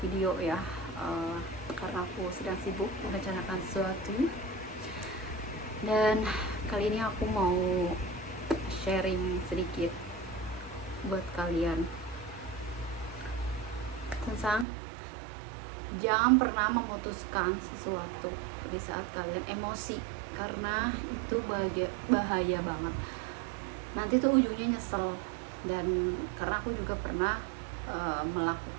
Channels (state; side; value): drops out; left; at 14.7 s